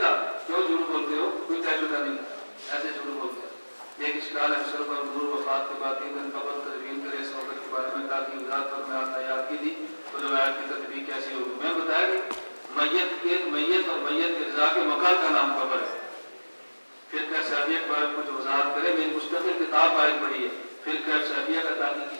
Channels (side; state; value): both; inverted; correlation -1.00